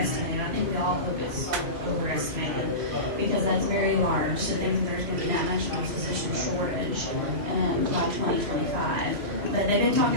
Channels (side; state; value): left; late; 2.9 ms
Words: I think we all hope it's overestimated because that's very large to think that there's going to be that much of a physician shortage by 2025. But they've been